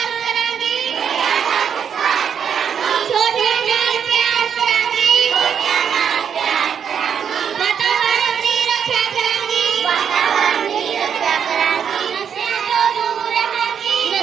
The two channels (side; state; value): left; quieter; 7.7 dB